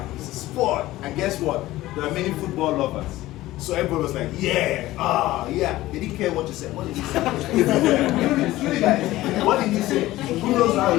it's a sport. And guess what? There are many football lovers. So everybody was like, yeah, yeah. They didn't care what you said. What did he say? Really, guys, what did he say? Who knows how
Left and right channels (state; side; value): quieter; right; 16.7 dB